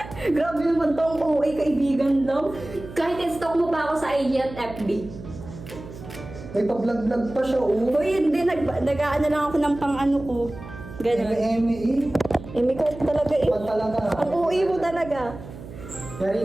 Grabe naman tong OA kaibigan lang. Kahit i-stalk mo pa ako sa IG at FB. May pa-vlog-vlog pa siya, oh. Uy, hindi. Nag-aano lang ako ng pang-ano ko. Ganun. Eme. May ka talaga eh. Pag talaga. Ang OA mo talaga.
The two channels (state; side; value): noise; right; hum, 14 dB below the sound